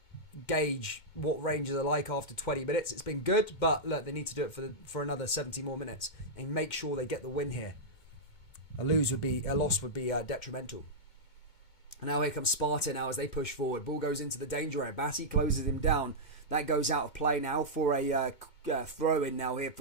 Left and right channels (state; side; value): late; right; 1.9 ms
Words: gauge what Rangers are like after 20 minutes. It's been good, but look, they need to do it for another 70 more minutes and make sure they get the win here. A loss would be detrimental. And now here comes Sparta now as they push forward. Ball goes into the danger area. Bassi closes him down. That goes out of play now for a throw-in now here